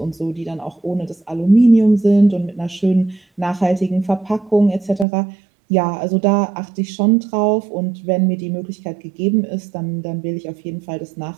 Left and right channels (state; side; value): drops out; left; at 5.1 s